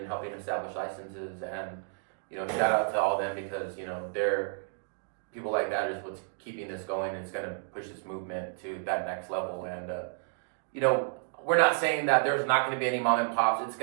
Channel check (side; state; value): left; silent; digital silence